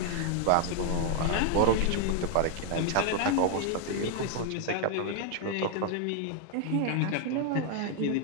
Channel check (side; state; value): both; different; correlation 0.00